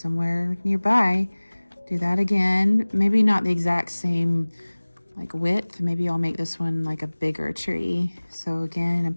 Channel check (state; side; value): inverted; both; correlation -1.00